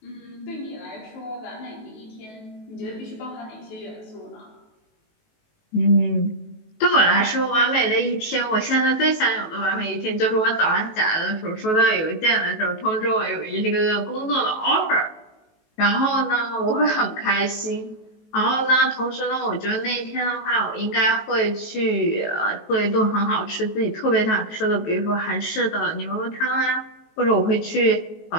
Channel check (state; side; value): late; right; 19 ms